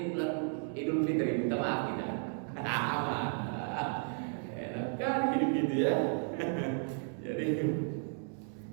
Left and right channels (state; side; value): silent; left; 55 dB below the other